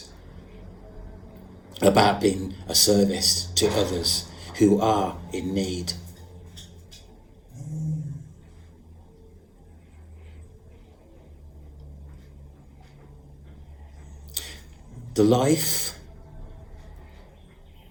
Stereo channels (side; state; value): both; identical; correlation 1.00